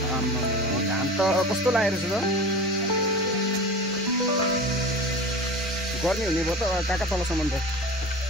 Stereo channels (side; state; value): both; normal; correlation 0.34